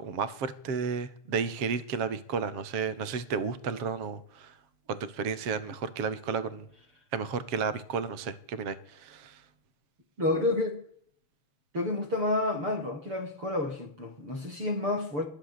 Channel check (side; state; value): left; late; 7.4 ms